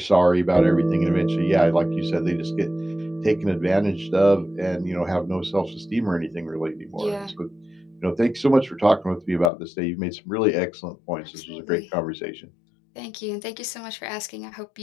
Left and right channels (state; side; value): drops out; right; at 9.5 s